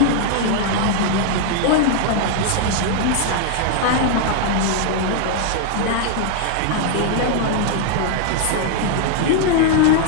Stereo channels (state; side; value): different; both; correlation 0.00